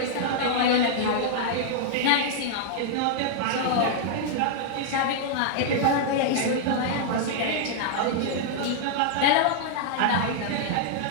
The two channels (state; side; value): different; both; correlation -0.01